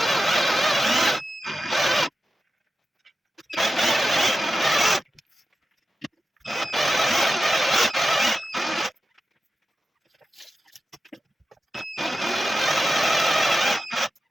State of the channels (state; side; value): normal; both; correlation 0.92